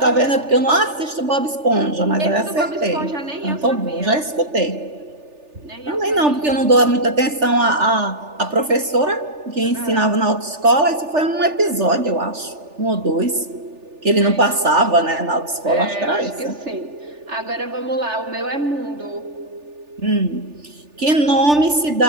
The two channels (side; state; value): left; late; 3.4 ms